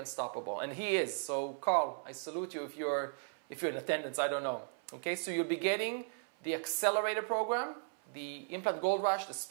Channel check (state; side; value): silent; left; 54 dB below the other